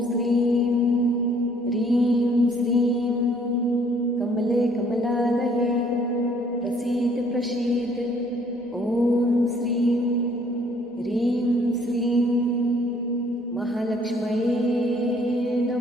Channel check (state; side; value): normal; both; correlation 0.61